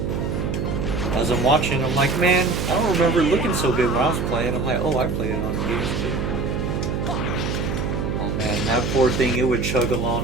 As I'm watching, I'm like, man, I don't remember it looking so good when I was playing. I'm like, oh, I played it on PS2. Oh man, that poor thing, it would chug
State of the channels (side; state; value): right; noise; hum, 2 dB below the sound